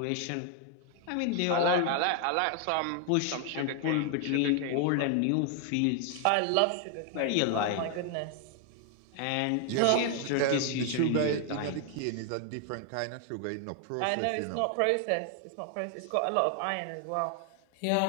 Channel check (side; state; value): both; different; correlation 0.00